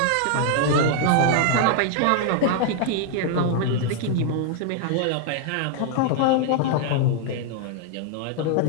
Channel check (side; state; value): both; different; correlation 0.00